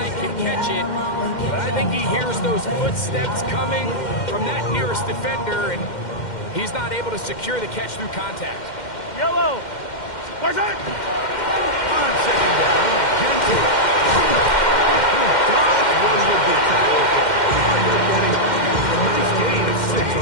can catch it. But I think he hears those footsteps coming from that nearest defender, and he's not able to secure the catch through contact. Yellow. Where's it? On second down, Genty. Dodge one would be tackled. A nice gain of 6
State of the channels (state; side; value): late; right; 2.1 ms